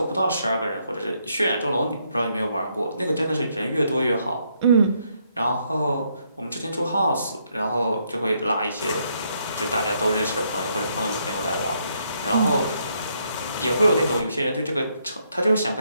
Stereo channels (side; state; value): both; inverted; correlation -0.74